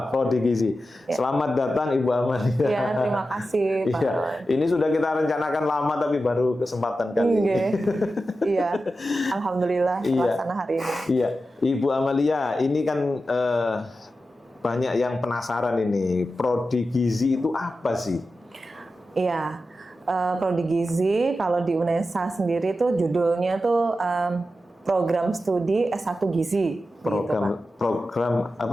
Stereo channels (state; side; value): normal; both; correlation 0.91